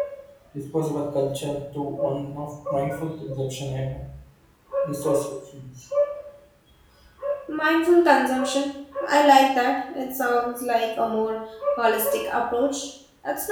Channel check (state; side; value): identical; both; correlation 1.00